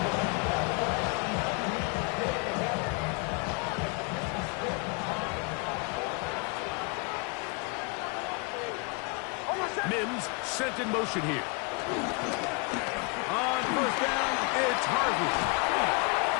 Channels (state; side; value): quieter; right; 32.9 dB